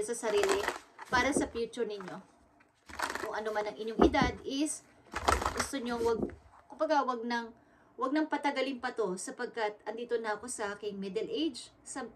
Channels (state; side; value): identical; both; correlation 1.00